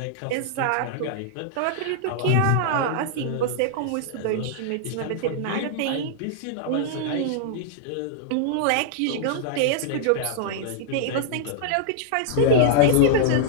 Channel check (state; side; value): different; both; correlation -0.01